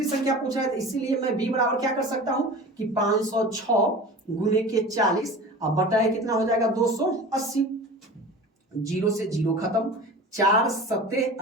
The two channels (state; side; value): normal; both; correlation 0.36